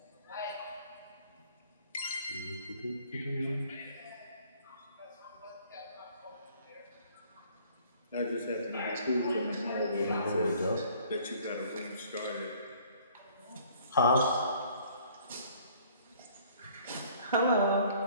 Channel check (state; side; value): inverted; both; correlation -0.57